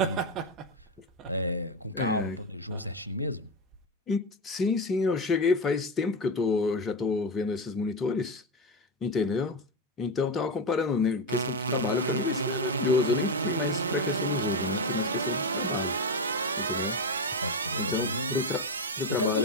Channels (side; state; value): both; normal; correlation 0.14